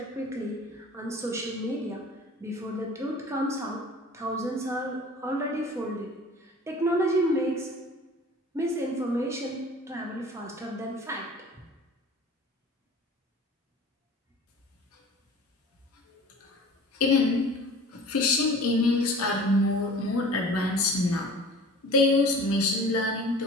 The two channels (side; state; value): both; normal; correlation 0.43